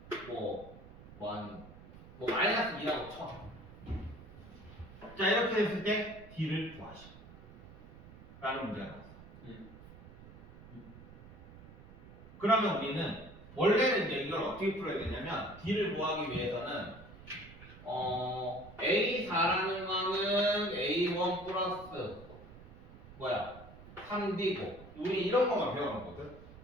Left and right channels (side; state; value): right; noise; rumble, 18 dB below the sound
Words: 마이너스 2라고 쳐. 자, 이렇게 됐을 때 D를 구하시오 라는 문제가 나왔어. 그러면 우리는 원래는 이제 이걸 어떻게 풀어야 되냐면 D를 구하기 위해서는 A4라는 거는 A1 플러스 3D고 우리 이런 것만 배워놓거든.